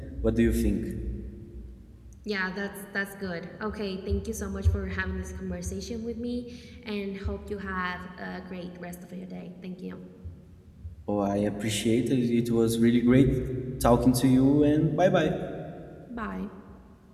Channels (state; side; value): identical; both; correlation 1.00